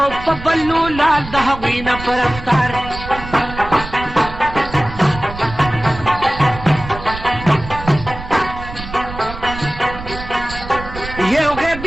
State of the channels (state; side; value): noise; right; rumble, 11 dB below the sound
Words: په بلو لال د هغوی نه په رفتار یو